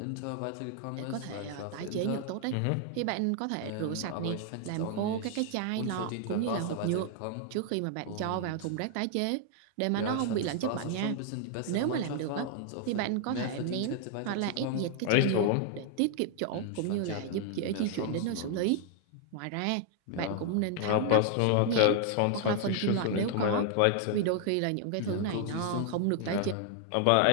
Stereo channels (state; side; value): different; both; correlation 0.00